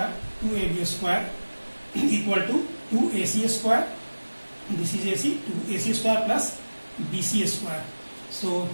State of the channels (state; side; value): inverted; both; correlation -1.00